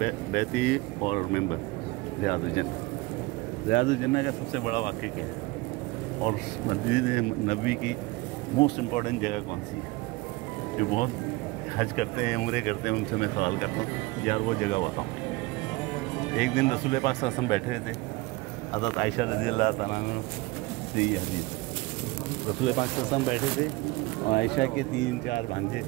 बैती और मेंबर रियाजुल जन्नत। रियाजुल जन्नत का सबसे बड़ा वाक़या क्या है और मस्जिद नबवी की मोस्ट इम्पॉर्टेंट जगह कौन सी है? जो बहुत हज करते हैं, उम्रे करते हैं, उनसे मैं सवाल करता हूँ यार वो जगह बताओ। एक दिन रसूल पाक सल्लल्लाहु अलैहि वसल्लम बैठे थे, हज़रत आयशा रज़ियल्लाहु तआला अन्हा से ये हदीस, रसूल पाक सल्लल्लाहु अलैहि वसल्लम बैठे थे और आयशा के 3-4 भांजे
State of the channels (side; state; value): left; quieter; 22.1 dB